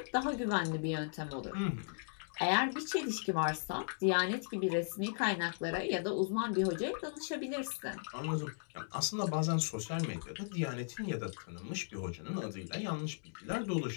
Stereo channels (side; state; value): right; silent; digital silence